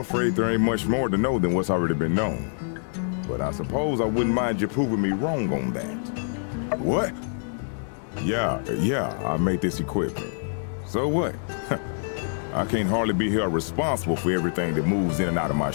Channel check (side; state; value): right; silent; digital silence